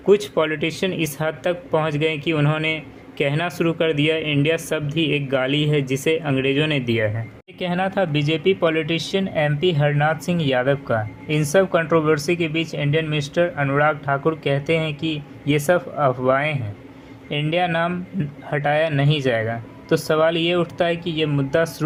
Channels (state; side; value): identical; both; correlation 1.00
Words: कुछ पॉलिटिशियन इस हद तक पहुंच गए कि उन्होंने कहना शुरू कर दिया इंडिया शब्द ही एक गाली है जिसे अंग्रेज़ों ने दिया है। ये कहना था BJP politician MP Harnath Singh Yadav का। इन सब कंट्रोवर्सी के बीच इंडियन मिनिस्टर अनुराग ठाकुर कहते हैं कि ये सब अफवाहें हैं, इंडिया नाम हटाया नहीं जाएगा। तो सवाल ये उठता है कि ये मुद्दा